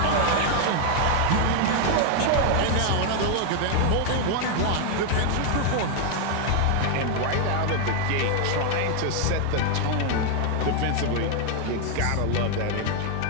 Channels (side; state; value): both; different; correlation 0.00